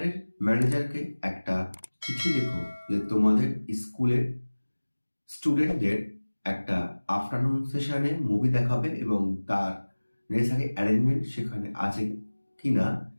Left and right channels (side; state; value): both; inverted; correlation -1.00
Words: ম্যানেজারকে একটা চিঠি লেখো যে তোমাদের স্কুলের স্টুডেন্টদের একটা আফটারনুন সেশনে মুভি দেখাবে এবং তার নেসেসারি অ্যারেঞ্জমেন্ট সেখানে আছে কিনা